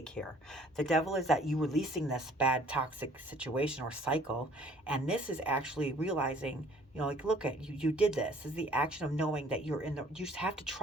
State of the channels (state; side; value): normal; both; correlation 0.56